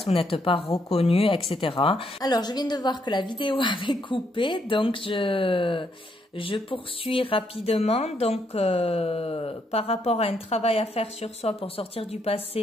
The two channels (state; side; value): normal; both; correlation 0.75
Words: vous n'êtes pas reconnu, etc. Alors, je viens de voir que la vidéo avait coupé, donc je poursuis rapidement. Donc, par rapport à un travail à faire sur soi pour sortir du